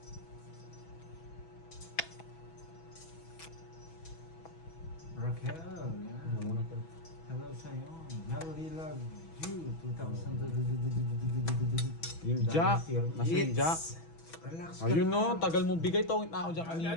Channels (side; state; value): right; late; 6.1 ms